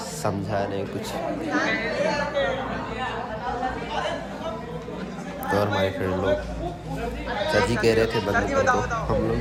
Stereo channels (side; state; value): both; identical; correlation 1.00